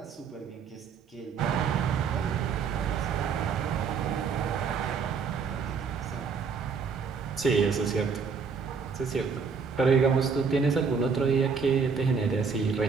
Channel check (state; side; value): quieter; left; 5.6 dB